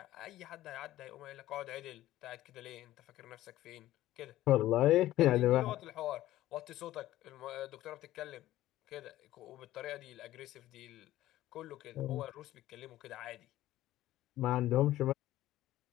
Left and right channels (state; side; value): quieter; right; 14.9 dB